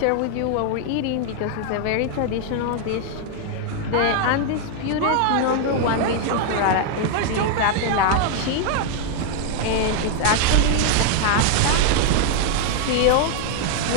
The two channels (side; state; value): both; different; correlation 0.00